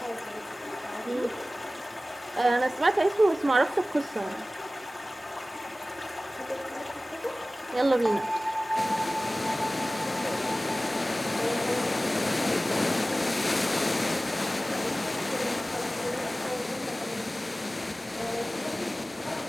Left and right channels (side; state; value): both; normal; correlation 0.97